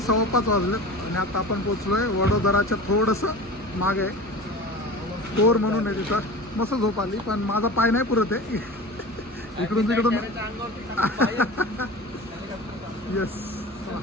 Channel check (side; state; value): both; normal; correlation 0.34